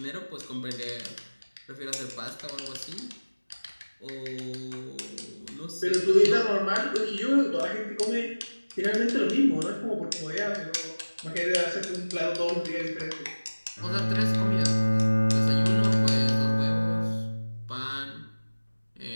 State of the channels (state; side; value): inverted; both; correlation -1.00